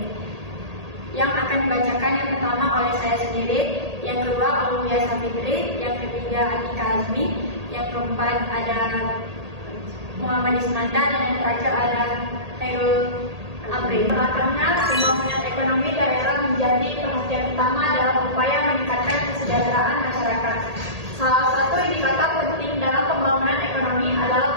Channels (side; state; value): left; late; 1.8 ms